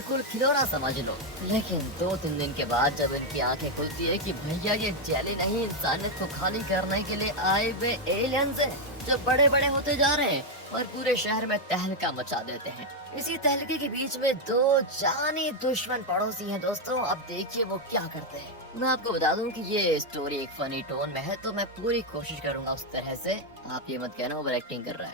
खिलौना समझ लो। लेकिन 2-3 दिन के बाद जब इनकी आंखें खुलती है कि भैया ये जेली नहीं, इंसानियत को खाली करने के लिए आए हुए एलियंस हैं जो बड़े बड़े होते जा रहे हैं और पूरे शहर में तहलका मचा देते हैं। इसी तहलके के बीच में 2 जानी दुश्मन पड़ोसी हैं दोस्तों। अब देखिए वो क्या करते हैं। मैं आपको बता दूं कि ये स्टोरी एक फनी टोन में है, तो मैं पूरी कोशिश करूंगा उस तरह से। आप ये मत कहना ओवर एक्टिंग कर रहा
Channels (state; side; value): normal; both; correlation 0.02